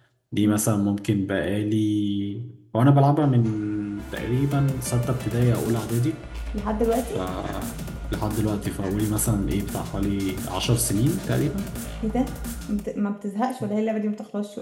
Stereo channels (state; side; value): identical; both; correlation 1.00